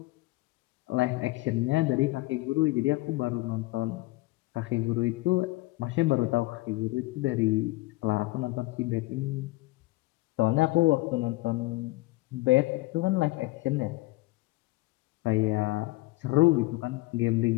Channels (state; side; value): quieter; right; 21.0 dB